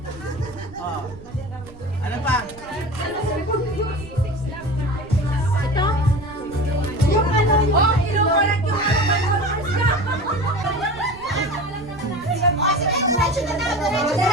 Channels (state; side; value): noise; right; rumble, 18 dB below the sound